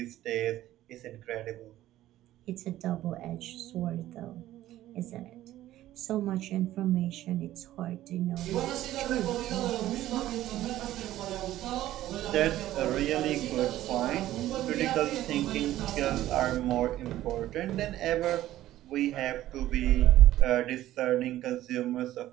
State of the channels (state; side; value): quieter; left; 14.2 dB